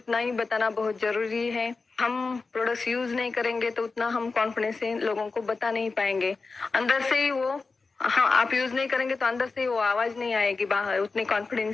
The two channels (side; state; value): right; quieter; 4.1 dB